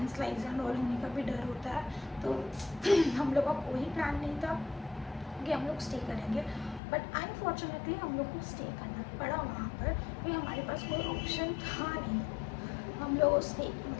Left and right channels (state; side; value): drops out; right; at 6.8 s